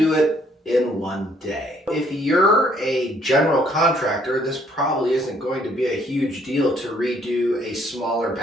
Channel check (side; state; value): both; normal; correlation 0.65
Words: it in one day. If you're a general contractor, this probably isn't going to be a huge deal to redo a smaller